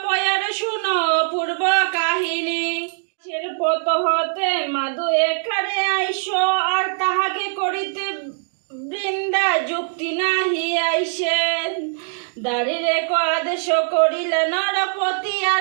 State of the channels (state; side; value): silent; left; digital silence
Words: পয়ার শুনো পূর্ব কাহিনী পত হতে মাদু এখানে আইসো আর তাহাকে করিতে বৃন্দা যুক্তি নাহি আইসেন দাঁড়িয়ে আদেশ করিলে নরপতি